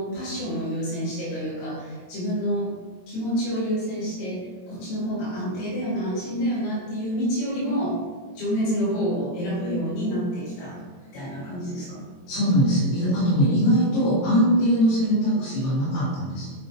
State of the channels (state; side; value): late; right; 22 ms